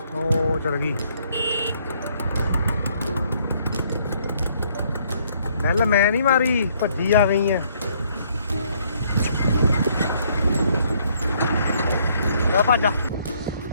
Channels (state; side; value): inverted; both; correlation -0.67